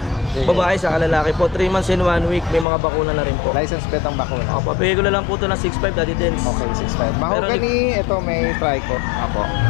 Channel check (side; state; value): right; drops out; at 2.7 s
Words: Babae sa lalaki po. 3 months and 1 week. May mga bakuna na rin po. License bet ang bakuna. Papabigay ko na lang po ito ng 6.5, Daddy Dens. Okay, 6.5. Mahogany, ito may trico. Apo.